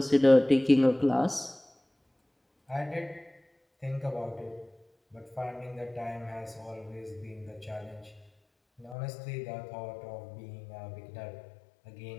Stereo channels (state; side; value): drops out; right; at 9.0 s